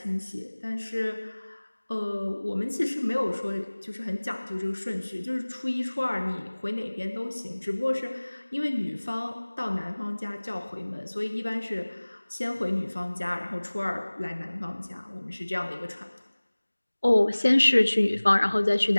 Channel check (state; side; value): inverted; both; correlation -1.00